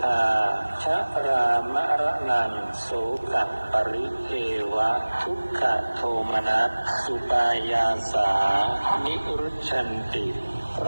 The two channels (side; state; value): both; inverted; correlation -1.00